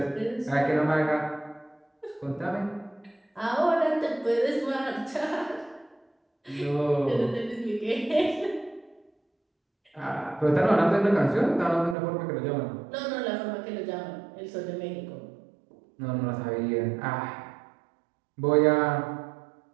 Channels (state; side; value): drops out; left; at 12.0 s